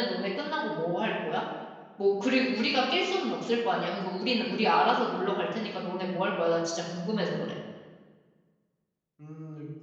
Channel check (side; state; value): both; identical; correlation 1.00